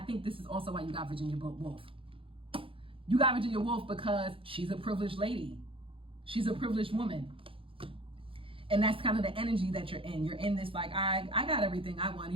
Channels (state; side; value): late; left; 0.26 ms